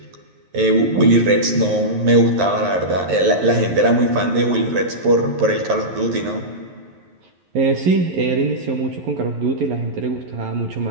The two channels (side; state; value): left; late; 11 ms